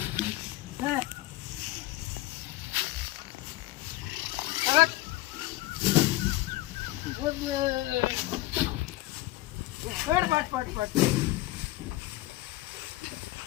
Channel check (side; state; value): right; quieter; 17.5 dB